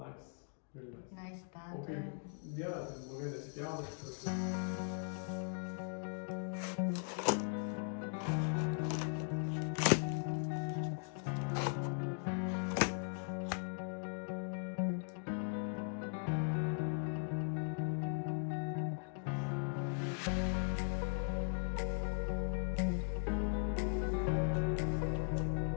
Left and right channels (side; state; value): right; silent; 52 dB below the other